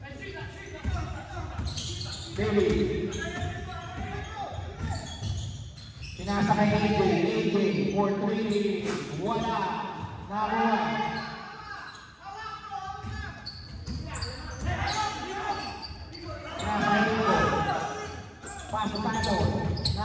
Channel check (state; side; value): identical; both; correlation 1.00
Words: Davey. Pinasa kay AJ, for 3, wala, nakuha. Pinasa kay Nico, paso tayo,